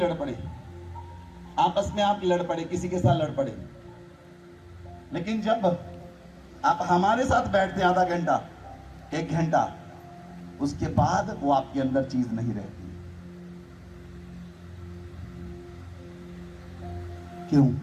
पड़े, आपस में आप लड़ पड़े, किसी के साथ लड़ पड़े, लेकिन जब आप हमारे साथ बैठते हैं आधा घंटा, एक घंटा, उसके बाद वो आपके अंदर चीज नहीं रहती। क्यों?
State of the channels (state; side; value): identical; both; correlation 1.00